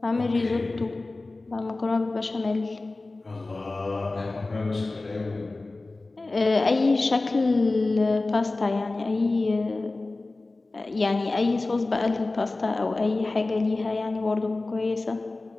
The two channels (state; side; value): quieter; right; 3.2 dB